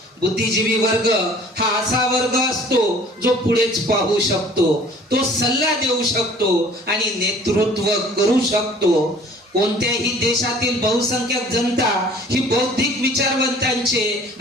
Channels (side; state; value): both; normal; correlation 0.51